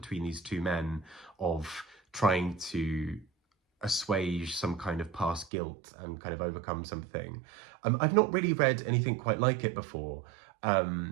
these two men of trying to assuage some kind of past guilt and kind of overcome something. I've not really read anything quite like it before.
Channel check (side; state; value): left; drops out; at 5.5 s